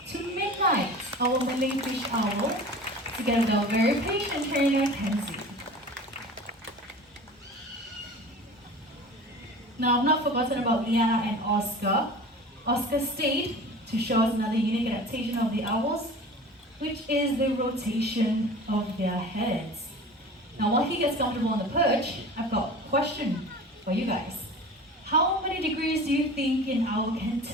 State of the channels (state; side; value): normal; both; correlation 0.38